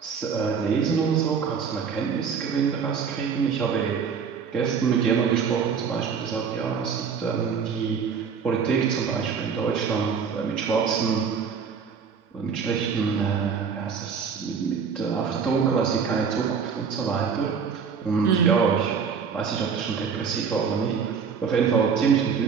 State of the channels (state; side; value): quieter; left; 6.3 dB